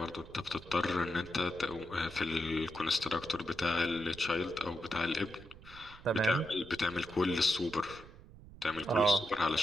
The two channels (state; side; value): noise; right; rumble, 18 dB below the sound